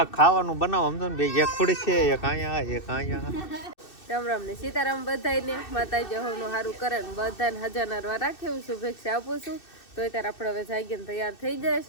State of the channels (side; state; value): right; late; 2.6 ms